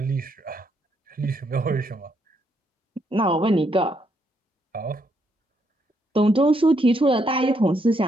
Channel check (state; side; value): normal; both; correlation 0.75